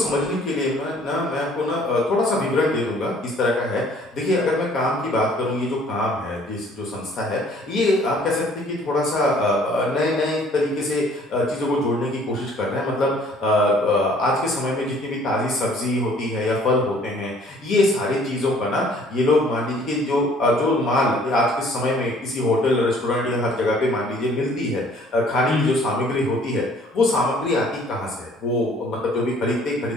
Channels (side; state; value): both; normal; correlation 0.56